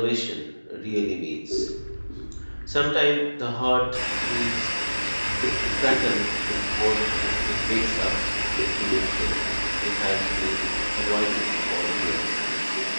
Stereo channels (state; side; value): inverted; both; correlation -1.00